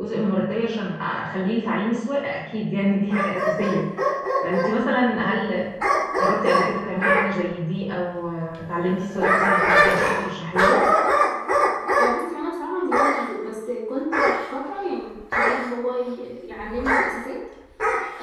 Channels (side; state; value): both; identical; correlation 1.00